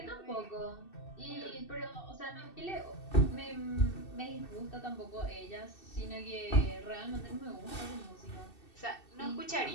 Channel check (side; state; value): right; late; 2.7 ms